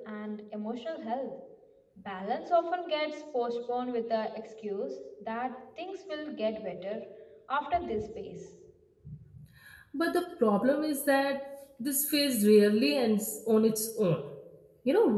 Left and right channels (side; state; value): both; identical; correlation 1.00